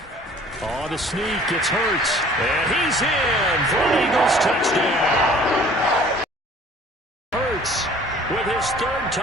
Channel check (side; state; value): both; normal; correlation 0.51